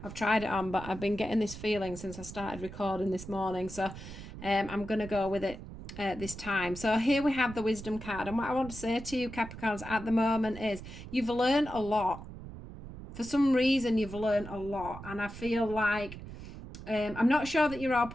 I've tried it on, but I've been getting this feeling since I started recording this morning. So I'm going to go with it this time. So here we have the wisdom card. And what I want to say to you, Capricorns, at the moment is you've learned a lot. For some reason, you've learned a lot. And I feel like I'm not sure that you're all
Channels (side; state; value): right; noise; rumble, 12 dB below the sound